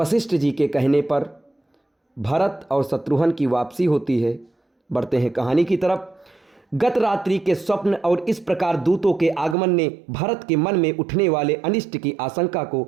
जी के कहने पर भरत और शत्रुघ्न की वापसी होती है। बढ़ते हैं कहानी की तरफ। गत रात्रि के स्वप्न और इस प्रकार दूतों के आगमन ने भरत के मन में उठने वाले अनिष्ट की आशंका को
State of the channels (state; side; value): drops out; left; at 9.6 s